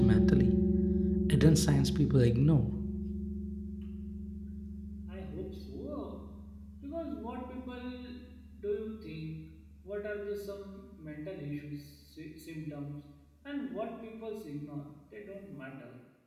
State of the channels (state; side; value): identical; both; correlation 1.00